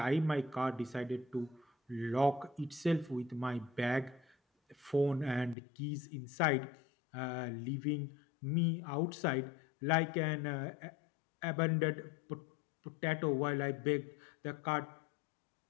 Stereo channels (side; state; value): right; drops out; at 5.6 s